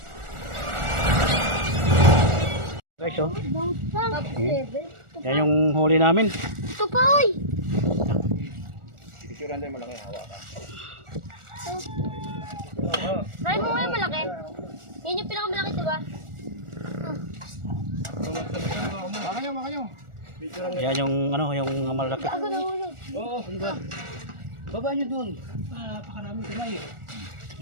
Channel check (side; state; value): left; late; 1.4 ms